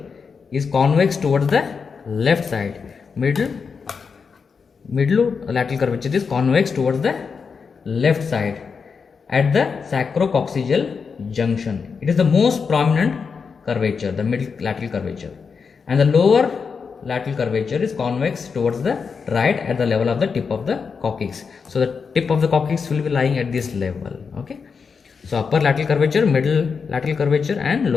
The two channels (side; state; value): right; quieter; 5.6 dB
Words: is convex towards the left side. Middle lateral curvature is convex towards the left side at the sacrococcygeal junction. It is the most prominent curvature, the middle lateral curvature, and the lower lateral curvature is convex towards the right at the level of the tip of the coccyx. So the tip of the coccyx will be lying at this level. Okay. So upper lateral curvature, middle lateral curvature and